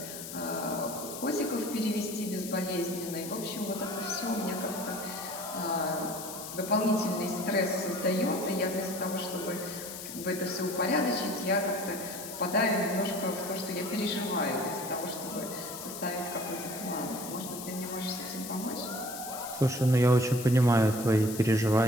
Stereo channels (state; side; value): noise; left; hiss, 9 dB below the sound